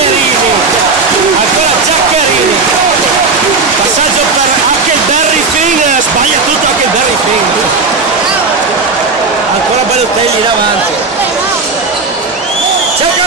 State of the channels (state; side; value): quieter; left; 4.2 dB